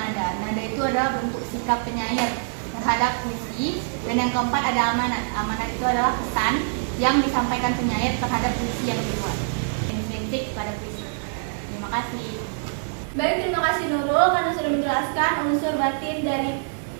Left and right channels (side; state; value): left; silent; digital silence